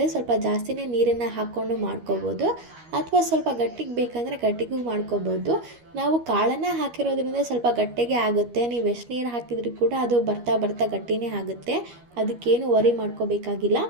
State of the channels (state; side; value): late; left; 13 ms